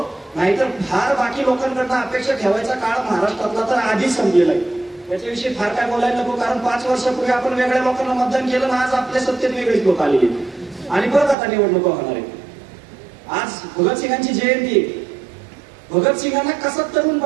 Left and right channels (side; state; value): left; drops out; at 11.4 s